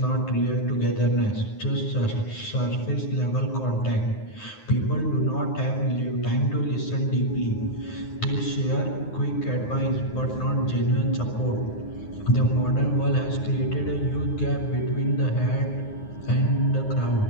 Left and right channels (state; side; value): late; right; 9.6 ms